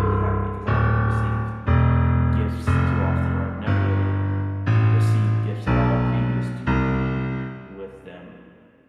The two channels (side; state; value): both; identical; correlation 1.00